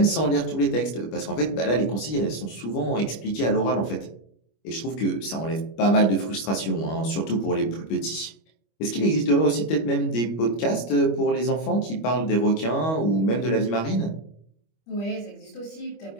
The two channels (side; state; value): right; late; 25 ms